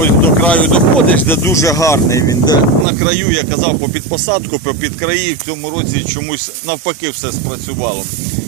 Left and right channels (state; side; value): drops out; left; at 2.9 s